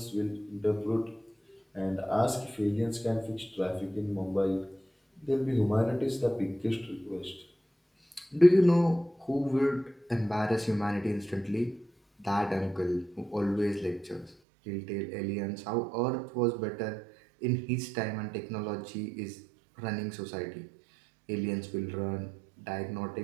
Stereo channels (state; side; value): drops out; left; at 14.4 s